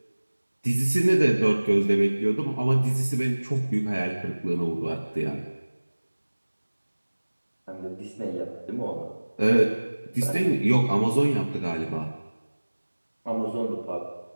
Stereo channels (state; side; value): inverted; both; correlation -1.00